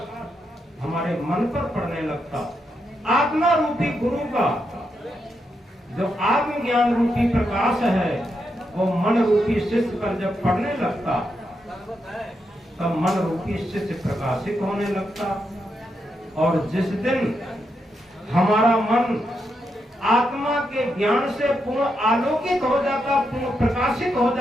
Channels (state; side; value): normal; both; correlation 0.83